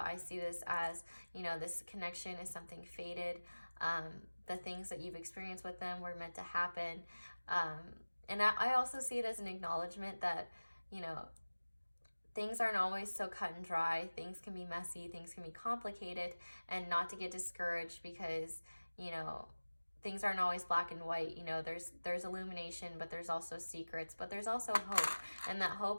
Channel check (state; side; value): inverted; both; correlation -1.00